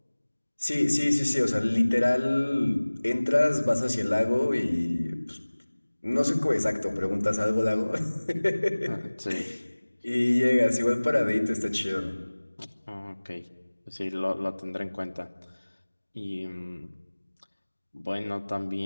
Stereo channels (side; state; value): both; inverted; correlation -1.00